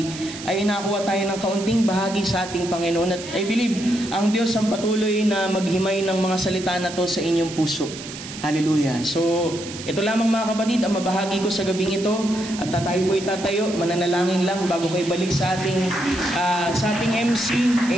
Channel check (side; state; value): right; noise; hiss, 12 dB below the sound